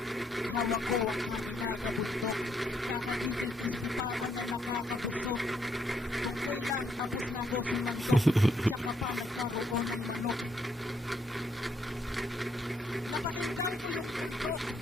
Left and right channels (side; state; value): both; normal; correlation 0.73